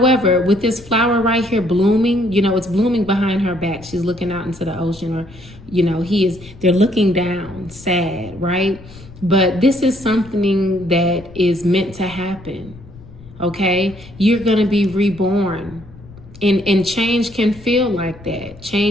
with this flower right here blooming, it's blooming behind her back. She's looking out into the ocean, or, they're looking down, sad, right? But this is something that is meant to happen, okay? You're going to be reborn. And change can feel like that.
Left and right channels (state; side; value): noise; left; rumble, 19 dB below the sound